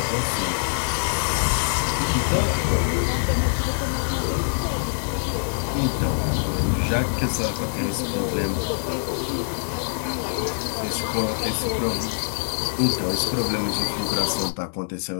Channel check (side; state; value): right; silent; digital silence